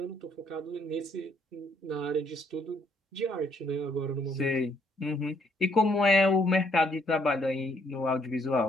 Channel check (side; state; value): both; normal; correlation 0.69